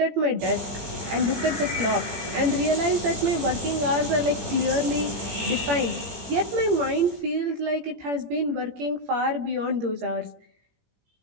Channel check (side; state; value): left; late; 17 ms